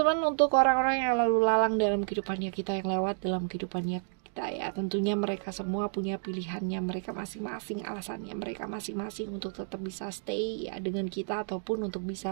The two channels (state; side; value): silent; left; digital silence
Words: untuk orang-orang yang lalu lalang dalam kehidupannya kita, yang lewat dalam kehidupannya kita ya, tentunya mereka semua punya pilihannya mereka masing-masing, alasannya mereka masing-masing untuk tetap bisa stay ya dengan kita, ataupun untuk